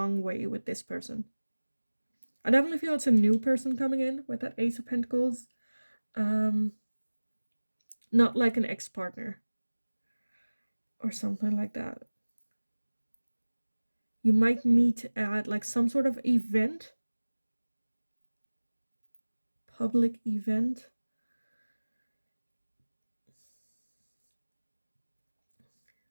way with this person. I definitely feel it's a new person coming in with that Ace of Pentacles. Not like an ex-partner or something like that. You might meet at like some sort of event, public event.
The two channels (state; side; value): inverted; both; correlation -1.00